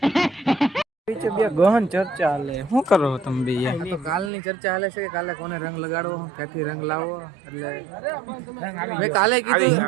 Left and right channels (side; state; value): left; drops out; at 4.3 s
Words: પીછે બે ગહન ચર્ચા હાલે. શું કરો તમે બે યાર? તો કાલની ચર્ચા હાલે છે કે કાલે કોને રંગ લગાડવો, ક્યાંથી રંગ લાવવો. એટલે રંગ આવી ગયો. કાલે કીધું